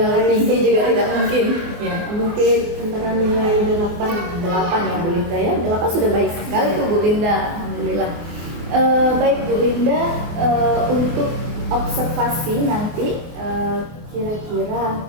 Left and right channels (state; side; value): late; left; 24 ms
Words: tinggi juga tidak mungkin. Ya. Mungkin antara nilai 8 ya Bu Linda ya. 8 sudah baik sekali tuh Bu Linda, alhamdulillah. Baik Bu Linda, untuk observasi nanti